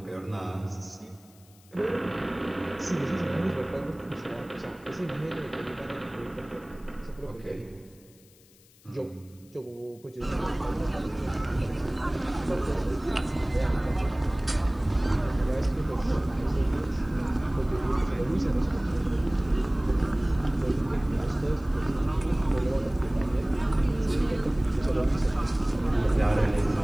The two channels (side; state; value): left; noise; hiss, 28 dB below the sound